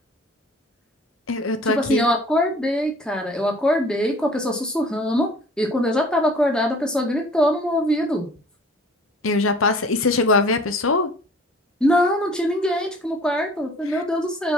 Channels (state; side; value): normal; both; correlation 0.50